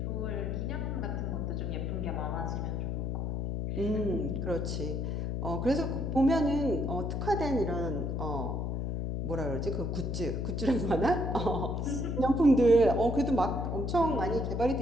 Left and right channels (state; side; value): noise; left; hum, 1 dB below the sound